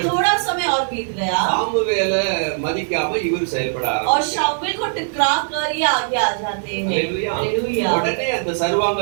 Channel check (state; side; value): silent; left; digital silence